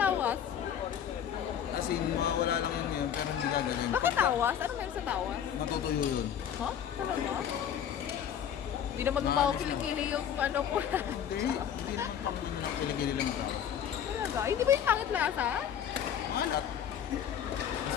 Kasi wala lang yun pero hindi ka ganyan. Bakit tawas? Ano meron sa tawas? Matutuyo yun. Huh? Talaga? Hindi naman mabaho kilikili yung ano ko. Hindi naman kiligili lang ka. Talaga? Hindi ba yung pangit lasa? Maalat.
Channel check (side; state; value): right; quieter; 9.1 dB